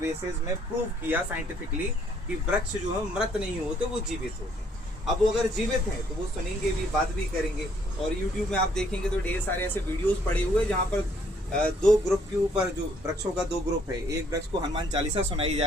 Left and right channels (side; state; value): both; normal; correlation 0.66